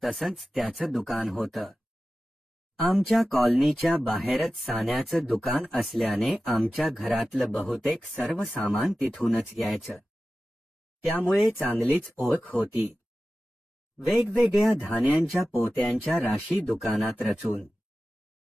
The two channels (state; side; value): normal; both; correlation 0.95